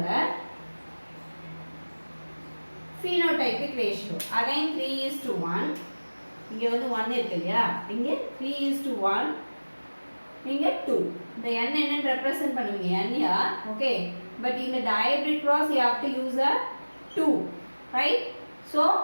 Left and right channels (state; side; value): inverted; both; correlation -1.00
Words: phenotypic ratio again 3:1. இங்க வந்து 1 இருக்கு இல்லையா, இங்க 3:1, இங்க 2. இந்த n என்னன்னு ரெப்ரசன்ட் பண்ணுவீங்க n here. Okay, but in the dihybrid cross you have to use a 2, right? So